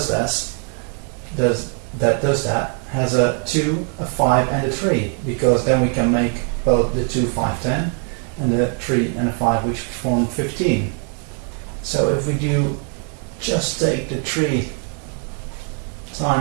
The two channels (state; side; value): quieter; left; 37.6 dB